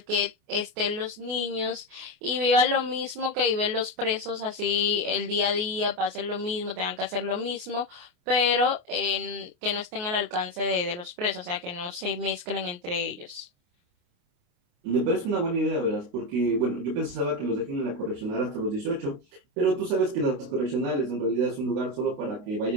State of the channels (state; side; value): late; left; 28 ms